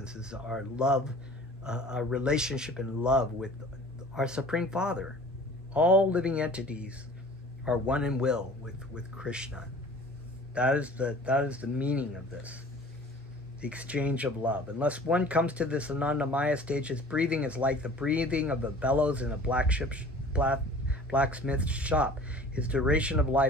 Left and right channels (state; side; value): normal; both; correlation 0.46